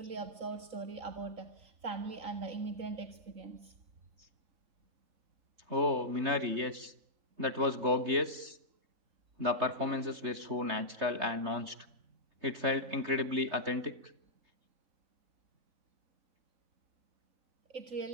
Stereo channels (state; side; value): late; left; 3.3 ms